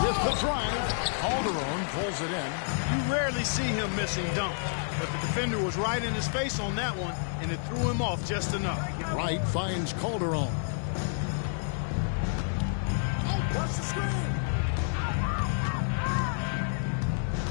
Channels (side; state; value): right; silent; digital silence